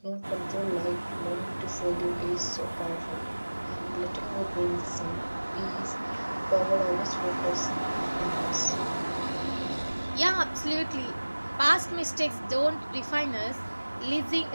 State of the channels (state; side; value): inverted; both; correlation -1.00